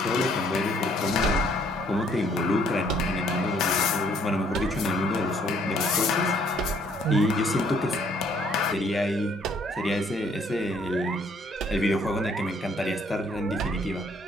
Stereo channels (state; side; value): normal; both; correlation 0.64